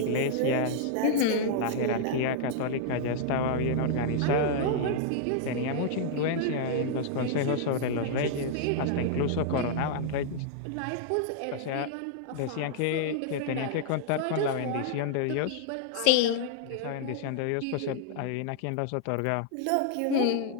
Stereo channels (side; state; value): both; different; correlation -0.01